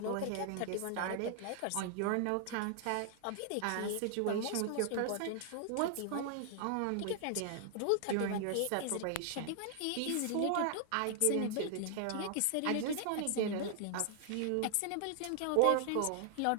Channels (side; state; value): both; different; correlation 0.00